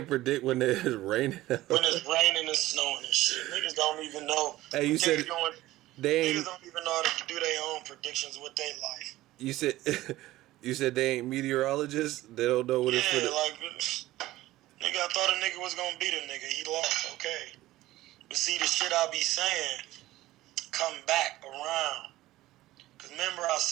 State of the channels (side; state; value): left; quieter; 16.5 dB